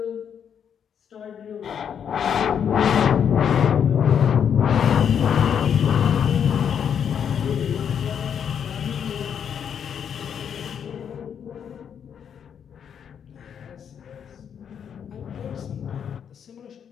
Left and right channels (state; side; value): quieter; right; 8.0 dB